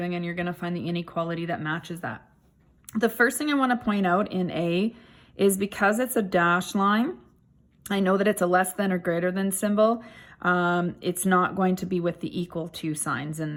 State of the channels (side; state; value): both; identical; correlation 1.00